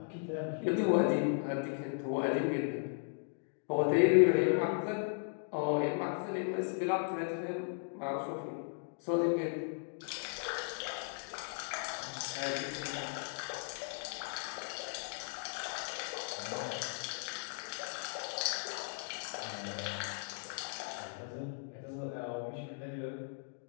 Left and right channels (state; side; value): silent; right; digital silence